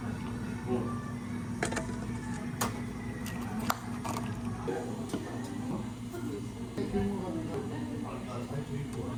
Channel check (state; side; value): identical; both; correlation 1.00